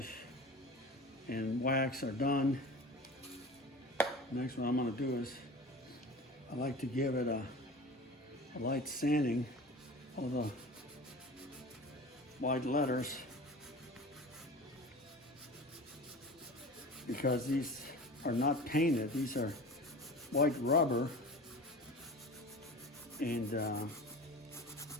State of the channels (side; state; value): both; normal; correlation 0.36